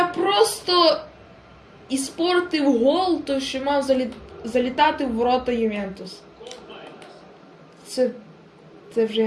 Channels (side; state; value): both; identical; correlation 1.00